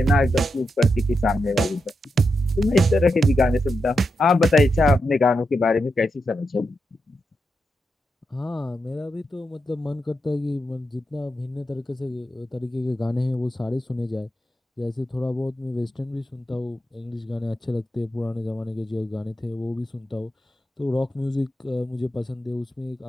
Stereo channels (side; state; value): both; normal; correlation 0.86